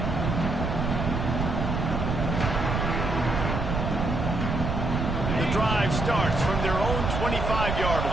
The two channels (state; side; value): noise; right; rumble, 1 dB below the sound